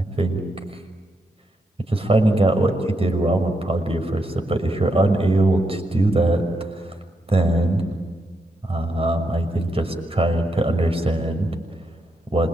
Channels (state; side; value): normal; both; correlation 0.81